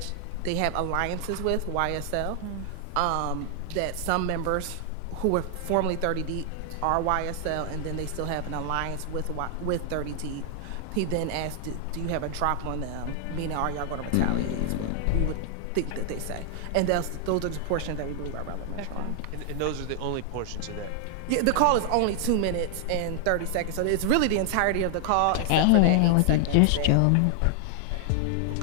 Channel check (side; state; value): both; different; correlation 0.00